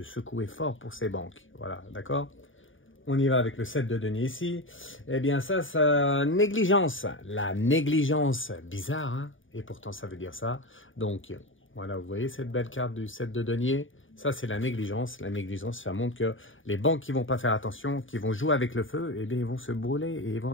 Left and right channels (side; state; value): right; late; 0.57 ms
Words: secouer fort pour ces banques. Voilà, d'accord? On y va avec le 7 de denier ici. Eh bien, ça, négligence. La négligence, bizarre, hein? Et pourtant, ça veut dire ça. Donc, voilà, vous voyez cette belle carte du 7 de denier? Ça, c'est la négligence. La négligence, ça montre que les banques qui ne vont pas faire attention, qui vont jouer avec le feu, eh bien, ils vont se brûler et ils vont